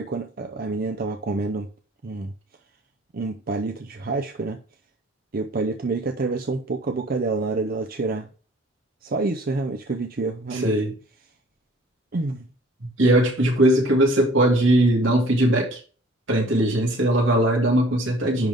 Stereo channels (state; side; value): normal; both; correlation 0.52